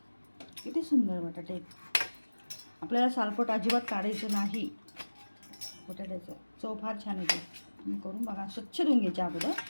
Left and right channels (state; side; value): inverted; both; correlation -1.00